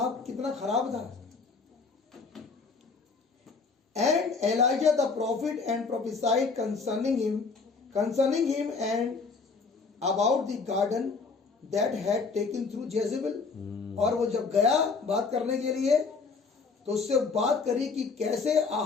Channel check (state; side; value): quieter; right; 4.6 dB